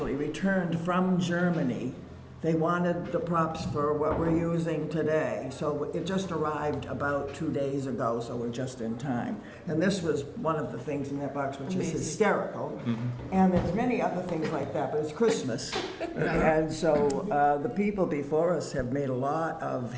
returned from Germany. They wanted the props for what we're using today. So it just arrived about 2 days ago, so we're just in time. And this was one of the things in that box, which is hysterical. And there's many other things like that, but it's Christmas. And so the people before us have made a lot of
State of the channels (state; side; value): identical; both; correlation 1.00